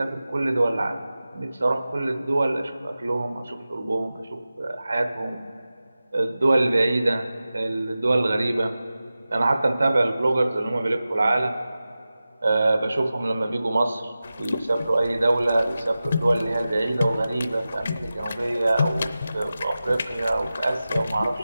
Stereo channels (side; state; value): both; inverted; correlation -0.95